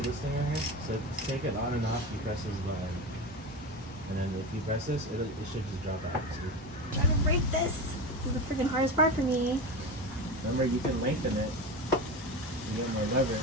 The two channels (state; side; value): normal; both; correlation 0.24